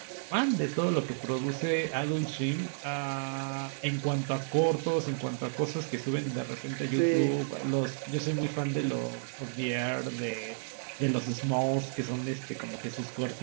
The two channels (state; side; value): silent; left; 57 dB below the other